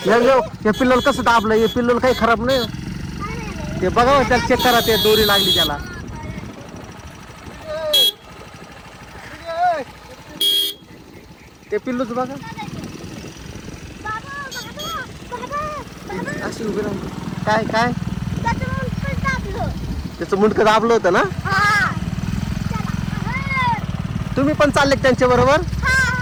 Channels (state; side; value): identical; both; correlation 1.00